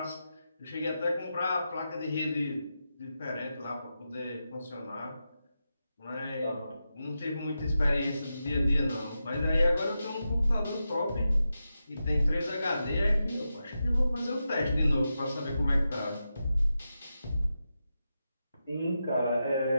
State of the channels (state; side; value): inverted; both; correlation -0.89